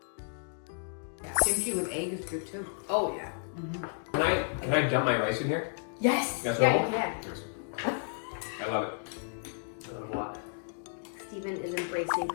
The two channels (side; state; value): right; silent; digital silence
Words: Kimchi with egg is good too. Oh yeah. Can I dump my rice in here? Yes. That's yeah, all? you can. I love it. I love it a lot. Steven is embracing